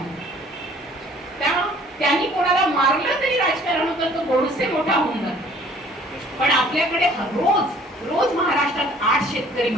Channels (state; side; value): normal; both; correlation 0.55